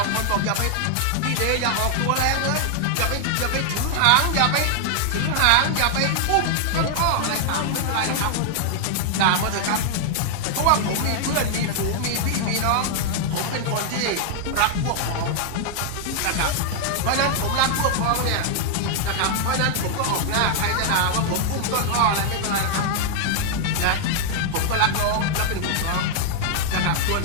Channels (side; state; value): both; different; correlation 0.00